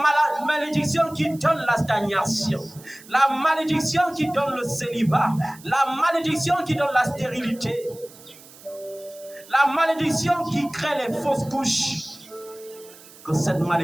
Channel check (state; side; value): noise; right; hiss, 21 dB below the sound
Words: malédiction qui donne la stagnation, la malédiction qui donne le célibat, la malédiction qui donne la stérilité, la malédiction qui crée les fausses couches, que cette